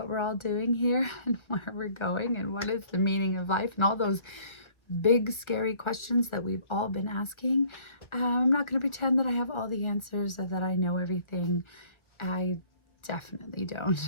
we're all doing here and where we're going and what is the meaning of life and all those big scary questions that we've all been asking. I'm not going to pretend that I have all the answers or that I know everything. I definitely don't.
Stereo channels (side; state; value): right; late; 1.4 ms